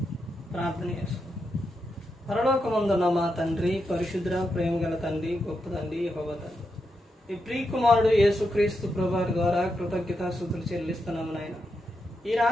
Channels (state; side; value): normal; both; correlation 0.85